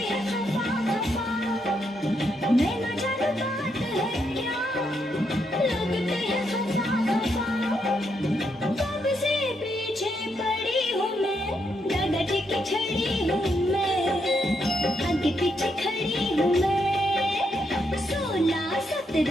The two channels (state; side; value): normal; both; correlation 0.79